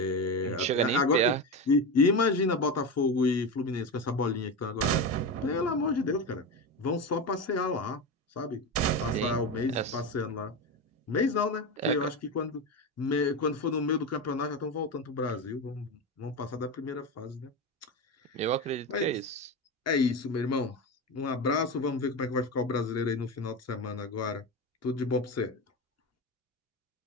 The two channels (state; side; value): normal; both; correlation 0.19